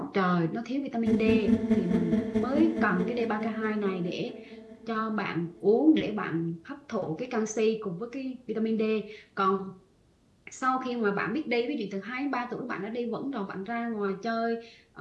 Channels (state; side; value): identical; both; correlation 1.00